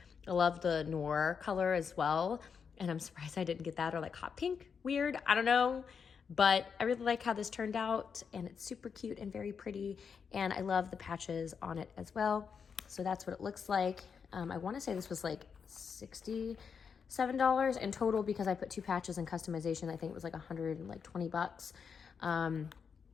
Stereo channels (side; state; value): right; quieter; 6.3 dB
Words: I love the noir color as well. And I'm surprised I didn't get that, or like hot pink. Weird, I don't know. But I really like how this turned out, and it's super cute and very pretty. And I love the patches on it as well. So that's what it looks like. I want to say this was like $67 in total because I put 2 patches in customization. I think it was like $120,